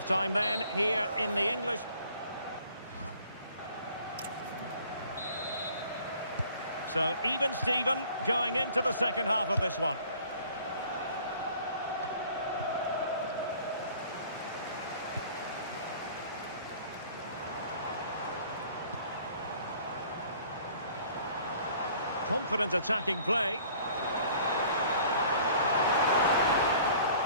then, here in the English. So even Steven going into the second half of this one. Confident attacking play.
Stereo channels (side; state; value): both; inverted; correlation -0.53